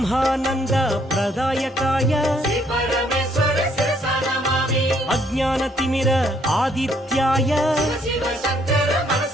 प्रदायकाय श्री परमेश्वर शिरसा नमामि अज्ञानतिमिर आदित्याय शिव शिव शङ्कर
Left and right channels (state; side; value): normal; both; correlation 0.67